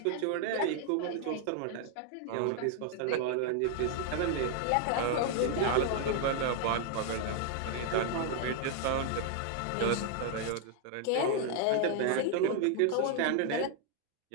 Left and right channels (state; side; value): different; both; correlation 0.00